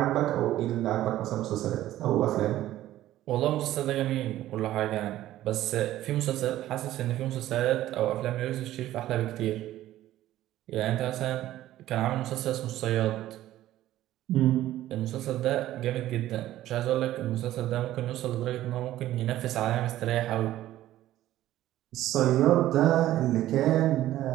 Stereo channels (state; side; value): quieter; left; 14.1 dB